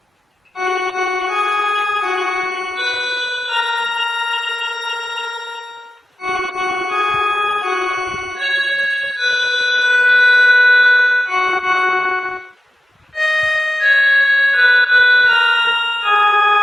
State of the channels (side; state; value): both; normal; correlation 0.93